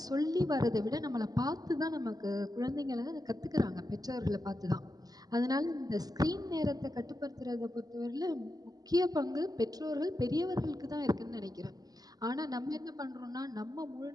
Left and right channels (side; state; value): left; late; 0.18 ms